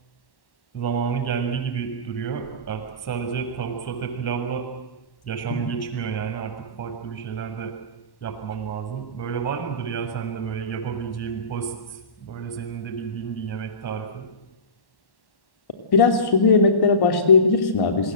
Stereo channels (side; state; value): right; late; 1.1 ms